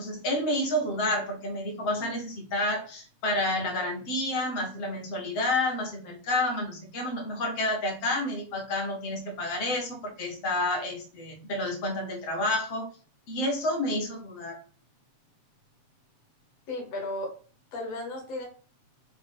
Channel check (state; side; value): late; right; 7.7 ms